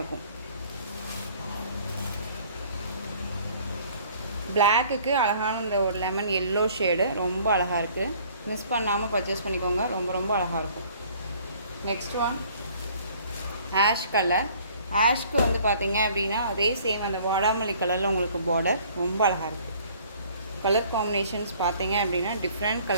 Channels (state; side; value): inverted; both; correlation -0.55